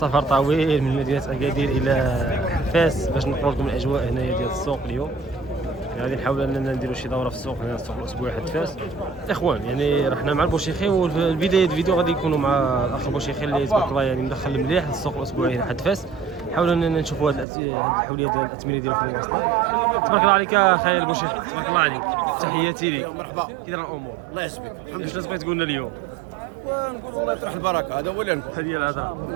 طويل من مدينه اكادير الى فاس باش نقول لكم الاجواء هنايا ديال السوق اليوم. غادي نحاول اننا نديروا شي دوره في السوق هنا، السوق الاسبوعي حد فاس. الاخوان يعني رحنا مع البوشيخي، والبدايه الفيديو غادي يكونوا مع الاخ البوشيخي اللي تبارك الله يعني مدخل مليح للسوق الاسبوعي هنا حد فاس. نحاولوا اننا نشوفوا هذه الحوليه ديال الاثمنه ديالو في المواصلات. تبارك الله عليك اخي البوشيخي، تبارك الله عليك، تحياتي لك. مرحبا، كي داير الامور؟ الله يسلمك. الحمد لله. واش بغيت تقول لنا اليوم؟ ونقول الله يطرح البركه، هذا هو اللي نقول. هذه هي الهضره،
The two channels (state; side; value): drops out; left; at 17.4 s